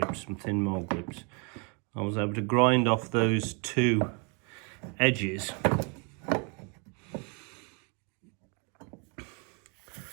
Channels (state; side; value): quieter; left; 34.8 dB